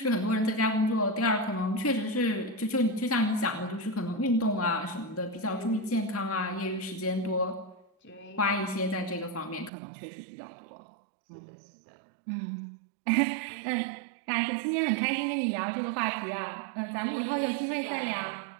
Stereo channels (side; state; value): left; drops out; at 9.7 s